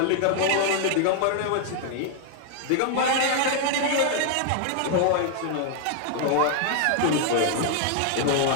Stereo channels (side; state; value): both; different; correlation 0.00